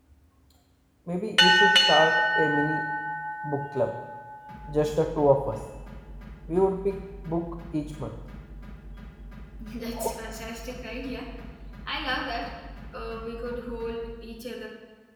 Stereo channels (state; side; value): identical; both; correlation 1.00